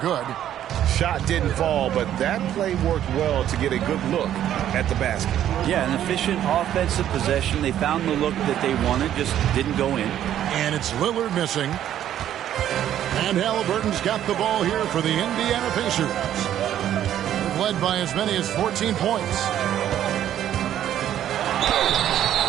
Shot didn't fall, but that play worked well to get a good look at the basket. Yeah, an efficient offensive possession. They found the look that they wanted, just didn't go in. And it's Lillard missing. And Halliburton's got the ball here for the Indiana Pacers. Led by as many as 14 points.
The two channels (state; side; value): quieter; left; 11.2 dB